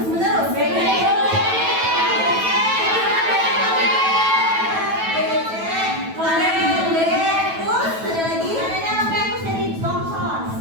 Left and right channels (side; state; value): left; late; 9.1 ms